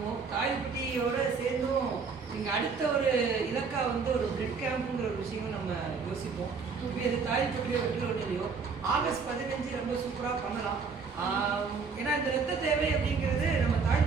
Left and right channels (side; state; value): left; quieter; 5.1 dB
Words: தாய்ப்பட்டியோட சேர்ந்தும் நீங்கள் அடுத்த ஒரு இலக்கா வந்து ஒரு பிளட் கேம்புங்கிற ஒரு விஷயமும் நம்ம யோசிப்போம். இப்போ இது தாய்ப்பட்டியோ வெற்றிலையோ ஆகஸ்ட் 15 ரொம்ப சூப்பராக பண்ணலாம். ஏன்னா இந்த ரத்த தேவை அப்படிங்கிறது நம்ம